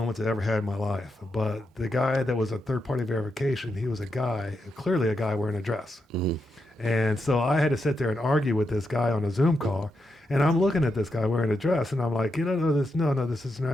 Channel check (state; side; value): normal; both; correlation 0.84